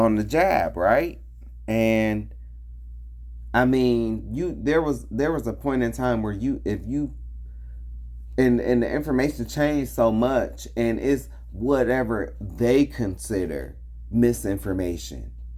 jab, right? And I mean, there was a point in time where and the information changed so much, and it's whatever they consider misinformation.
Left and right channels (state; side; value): identical; both; correlation 1.00